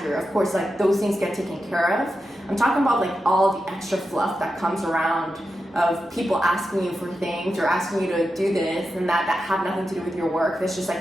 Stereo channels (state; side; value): normal; both; correlation 0.89